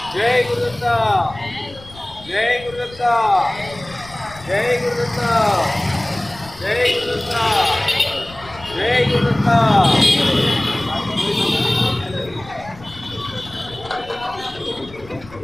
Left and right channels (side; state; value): left; noise; rumble, 20 dB below the sound